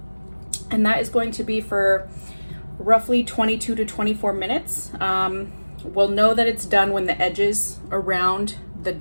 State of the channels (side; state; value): both; inverted; correlation -1.00